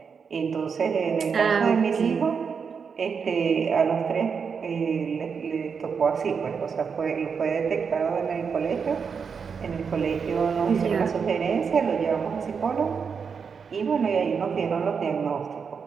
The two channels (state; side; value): quieter; left; 6.1 dB